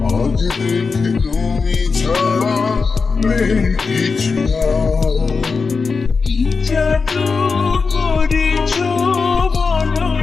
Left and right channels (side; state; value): right; quieter; 4.7 dB